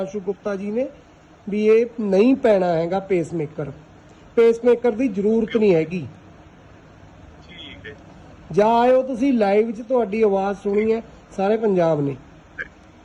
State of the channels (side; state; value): both; identical; correlation 1.00